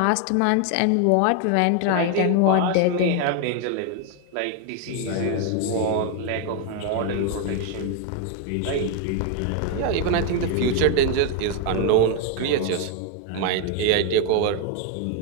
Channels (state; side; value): different; both; correlation 0.01